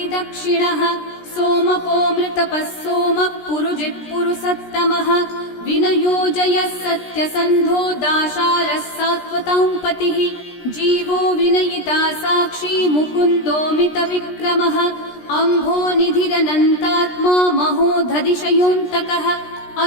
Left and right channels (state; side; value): late; right; 17 ms